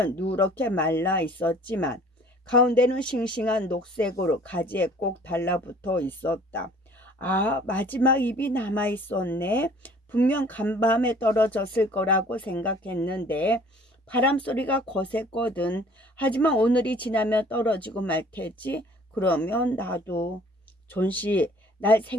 누렇게 말라 있었지만 가운데는 싱싱한 녹색으로 가지에 꼭 달라붙어 있었다. 아, 마지막 잎이 남아 있었네. 분명 간밤에 떨어졌을 거라고 생각했는데 바람 소리가 거셌거든. 하지만 오늘이 지나면 떨어지고 말 테지. 그러면 나도. 존씨, 날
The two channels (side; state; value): both; normal; correlation 0.53